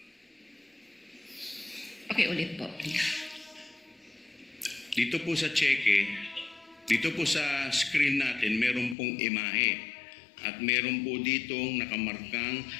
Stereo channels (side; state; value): right; drops out; at 9.0 s